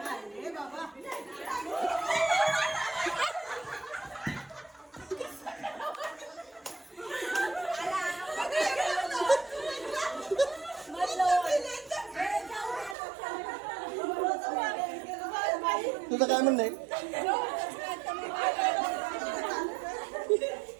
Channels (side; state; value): left; drops out; at 13.0 s